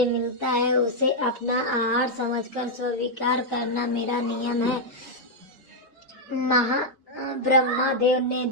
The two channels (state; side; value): normal; both; correlation -0.02